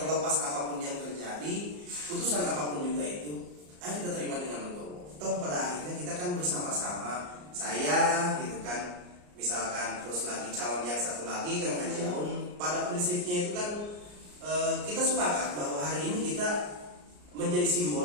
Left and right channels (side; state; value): left; late; 34 ms